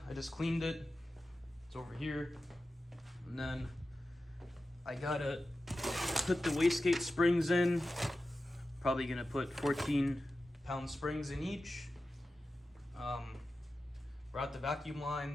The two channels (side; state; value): both; normal; correlation 0.93